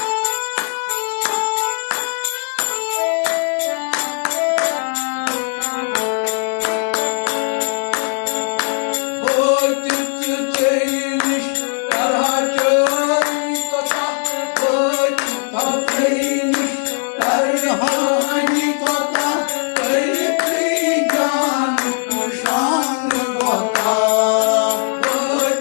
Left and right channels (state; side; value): silent; right; digital silence